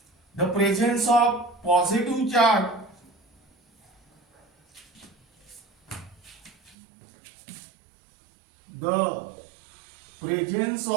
the presence of positive charge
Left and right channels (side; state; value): left; drops out; at 6.8 s